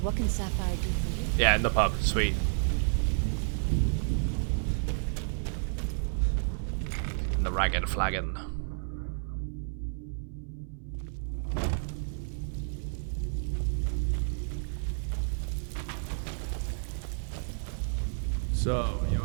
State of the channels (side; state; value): left; silent; 57 dB below the other